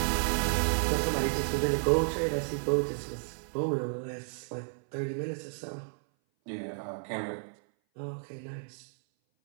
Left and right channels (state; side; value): silent; left; 57 dB below the other